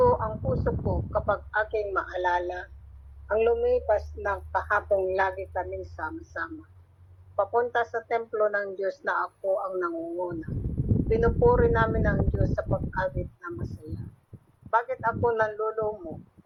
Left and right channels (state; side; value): identical; both; correlation 1.00